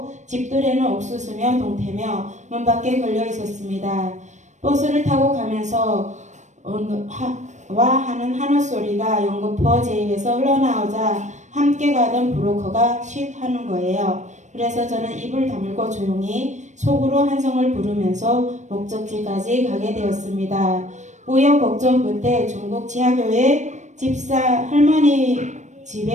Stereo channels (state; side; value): late; left; 0.34 ms